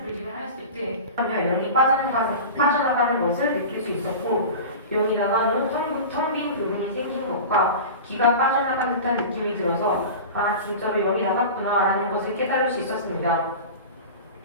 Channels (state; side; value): inverted; both; correlation -0.32